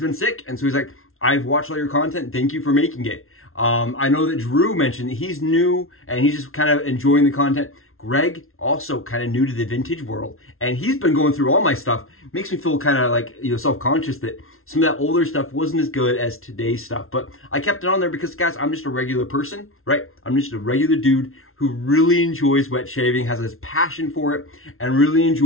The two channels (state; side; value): late; right; 0.62 ms